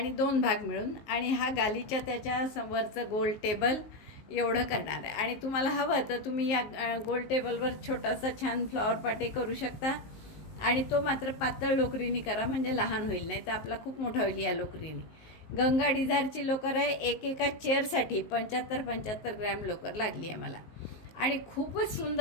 2 भाग मिळून आणि हा गालीच्या त्याच्या वरचं गोल टेबल एवढं करणार आहे. आणि तुम्हाला हवं तर तुम्ही या गोल टेबलवर छोटासा छान फ्लॉवर पाटे करू शकता. आणि तो मात्र पातळ लोकरीने करा, म्हणजे लहान होईल, नाही तर आपला खूप मोठा होईल या लोकरीने. गंगा डिझायरची लोकर आहे. एका चेअरसाठी 75 ग्रॅम लोकर लागली आहे मला. आणि खूपच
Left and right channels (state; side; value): late; right; 19 ms